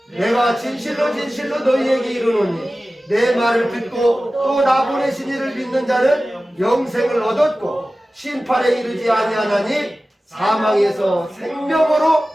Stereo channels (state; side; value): normal; both; correlation 0.96